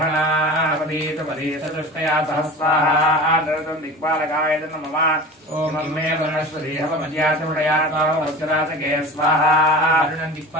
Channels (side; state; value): both; normal; correlation 0.35